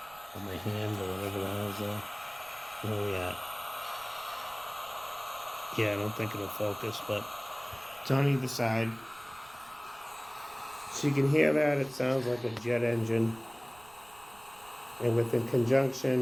or my hand or whatever the hell's there. Where are we at? Yeah, I don't think it'll focus, but it's on either side. So you can hear that. It sounds like a jet engine. And with the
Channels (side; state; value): right; noise; rumble, 25 dB below the sound